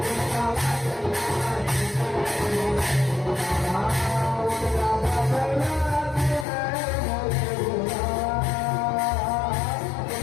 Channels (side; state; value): right; drops out; at 6.5 s